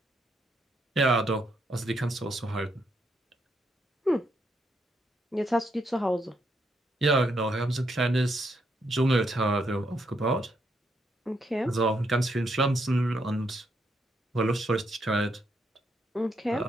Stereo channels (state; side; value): normal; both; correlation 0.77